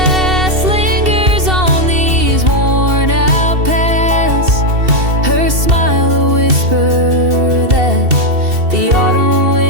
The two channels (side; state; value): left; late; 2.7 ms